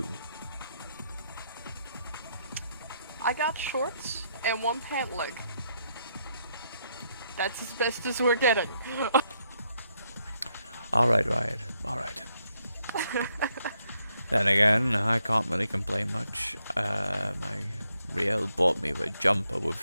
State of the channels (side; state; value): both; inverted; correlation -0.77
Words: I got shorts and one pant leg. That's as best as we're getting. Alright, Riot. Alright. Then again, I can't really complain much. My Riel bought me a jumper with